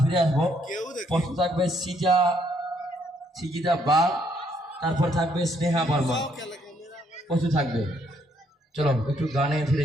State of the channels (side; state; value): both; normal; correlation 0.70